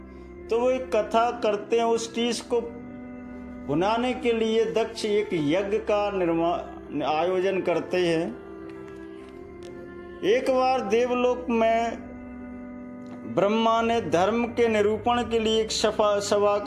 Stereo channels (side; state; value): both; identical; correlation 1.00